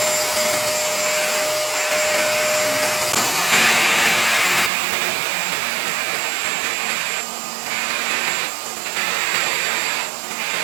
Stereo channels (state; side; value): drops out; left; at 4.7 s